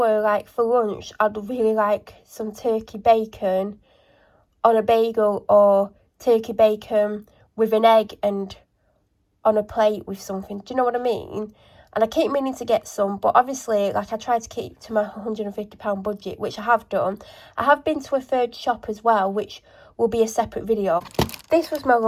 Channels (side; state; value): both; identical; correlation 1.00